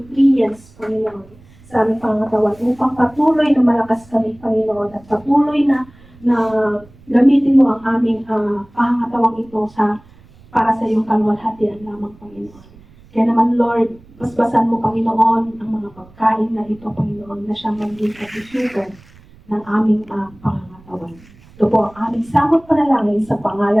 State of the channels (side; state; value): right; noise; rumble, 25 dB below the sound